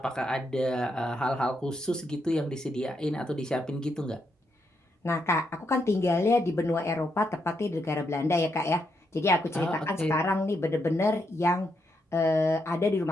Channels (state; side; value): normal; both; correlation 0.80